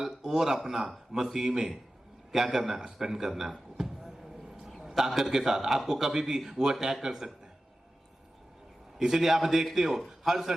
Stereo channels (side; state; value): both; normal; correlation 0.94